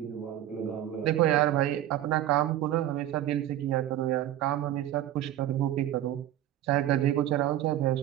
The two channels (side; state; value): left; quieter; 12.8 dB